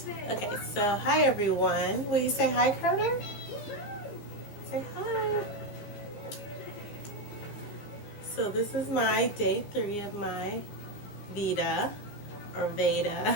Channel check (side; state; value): right; late; 15 ms